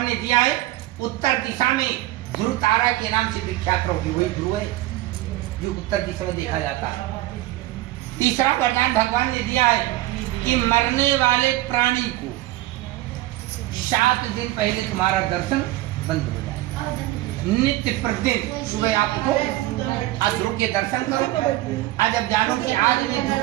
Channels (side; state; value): left; quieter; 17.0 dB